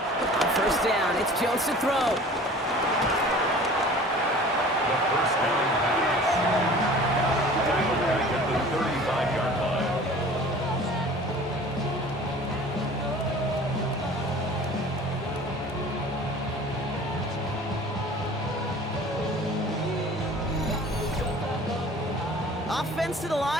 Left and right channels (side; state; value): both; normal; correlation 0.45